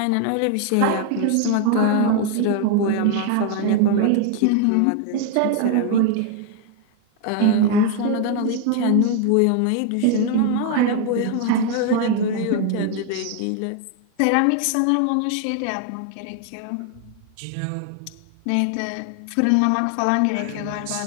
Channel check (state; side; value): different; both; correlation 0.00